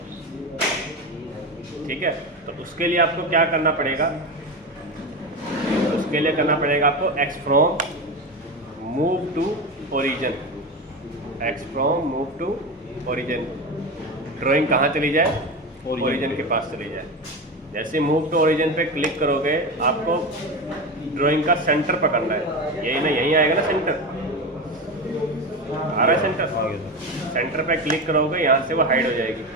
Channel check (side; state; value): both; normal; correlation 0.21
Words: ठीक है। तो उसके लिए आपको क्या करना पड़ेगा, उसके लिए करना पड़ेगा आपको X from move to origin, X from move to origin, drawing कहाँ चली जाए, ओरिजिन के पास चली जाए। जैसे मूव टू ओरिजिन पे क्लिक करोगे आपको ड्राइंग का सेंटर पकड़ना है, यही ना, यहीं आएगा ना सेंटर, आ रहा है सेंटर, सेंटर पे क्लिक करोगे यहाँ से वो हाइड हो जाएगी,